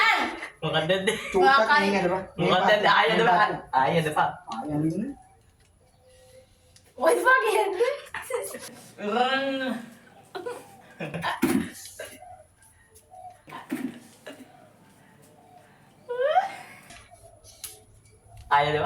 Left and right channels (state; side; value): identical; both; correlation 1.00